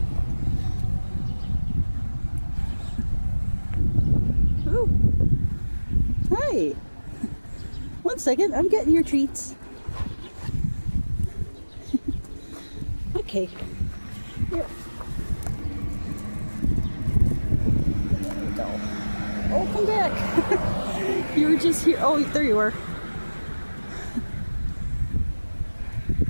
Ooh. Hi. 1 second, I'm getting your treats. Okay. Here. There we go. Oh, come back. You were just here. Oh, there you are.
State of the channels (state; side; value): inverted; both; correlation -1.00